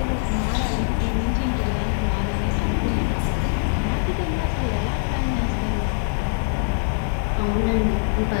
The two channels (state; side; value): silent; right; digital silence